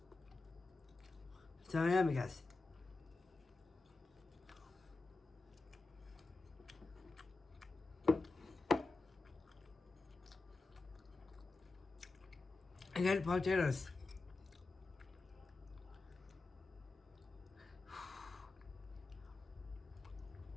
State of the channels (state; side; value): quieter; right; 3.5 dB